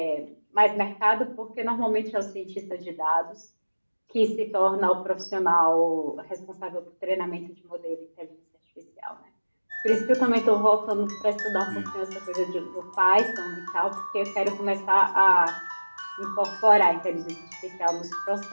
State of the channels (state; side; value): inverted; both; correlation -1.00